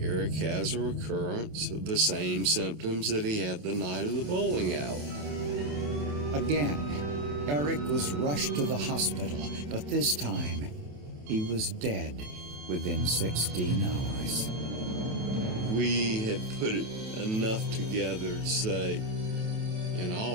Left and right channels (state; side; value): late; left; 28 ms